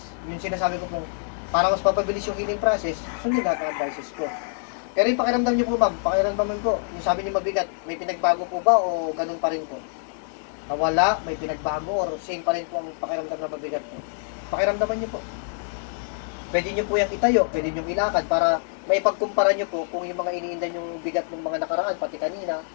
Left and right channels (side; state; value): right; silent; digital silence